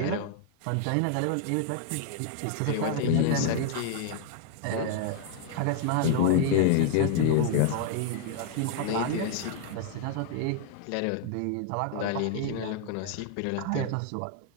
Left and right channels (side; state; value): both; different; correlation 0.00